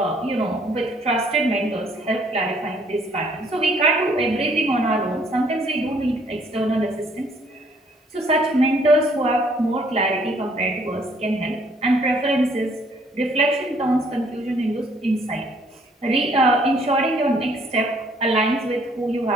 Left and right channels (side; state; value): both; normal; correlation 0.63